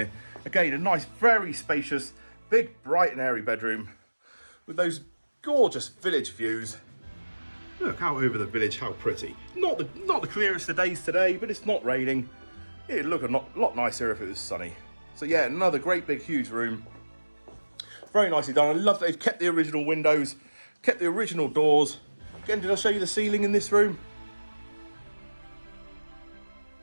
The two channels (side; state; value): both; inverted; correlation -1.00